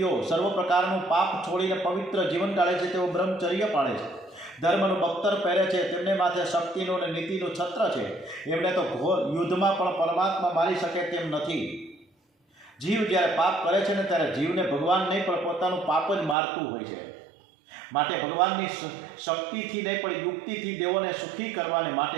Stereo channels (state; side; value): drops out; left; at 16.4 s